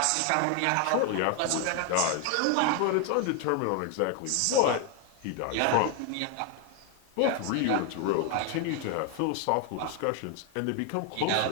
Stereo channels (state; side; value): different; both; correlation 0.01